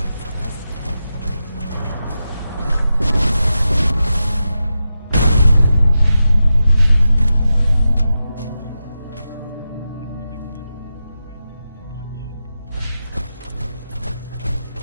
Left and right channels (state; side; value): inverted; both; correlation -0.90